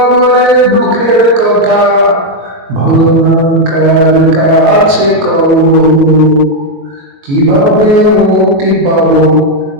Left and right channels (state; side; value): late; left; 22 ms